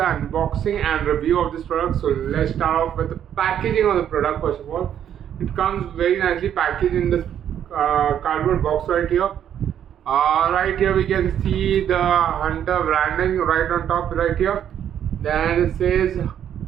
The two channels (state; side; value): quieter; left; 9.7 dB